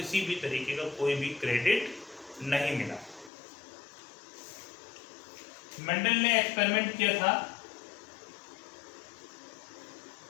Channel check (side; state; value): right; drops out; at 3.3 s